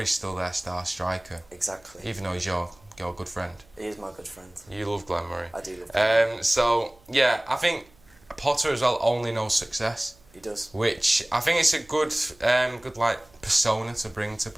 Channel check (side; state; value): right; noise; hum, 29 dB below the sound